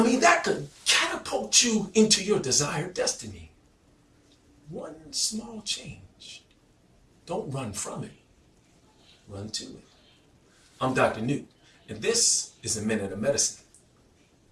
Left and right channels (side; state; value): both; identical; correlation 1.00